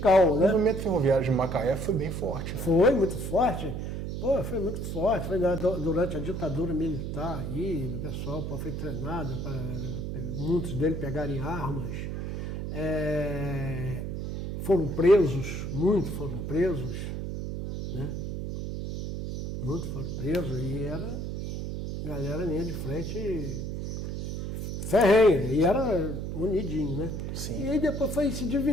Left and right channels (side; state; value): right; noise; hum, 4 dB below the sound